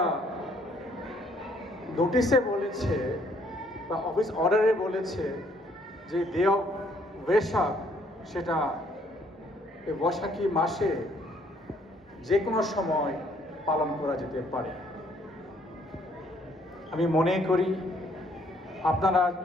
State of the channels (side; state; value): both; normal; correlation 0.65